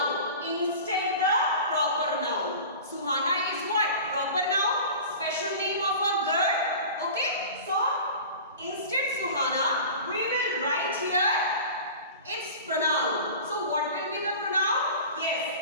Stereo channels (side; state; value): both; inverted; correlation -0.37